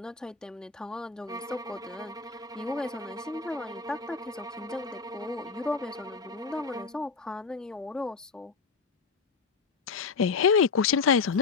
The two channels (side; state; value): right; quieter; 4.9 dB